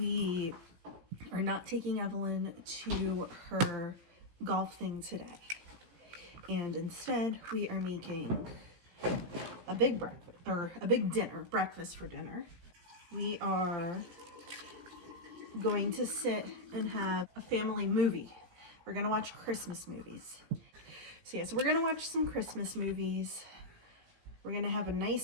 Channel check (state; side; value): late; left; 17 ms